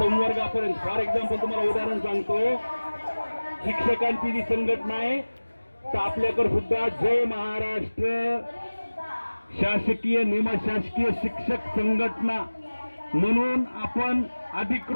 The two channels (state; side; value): inverted; both; correlation -1.00